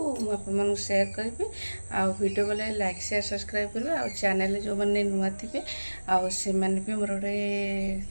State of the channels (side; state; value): both; inverted; correlation -1.00